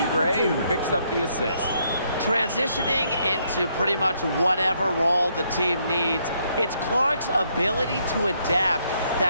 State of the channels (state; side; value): inverted; both; correlation -0.72